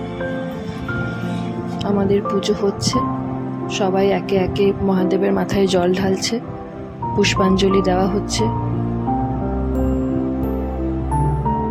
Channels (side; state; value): both; identical; correlation 1.00